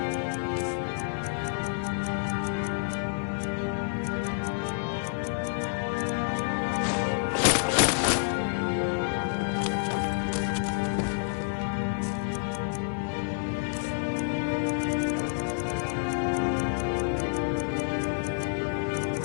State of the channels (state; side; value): silent; right; digital silence